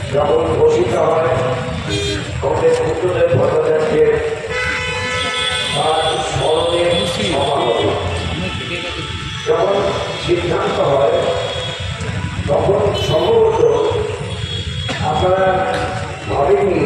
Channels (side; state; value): both; identical; correlation 1.00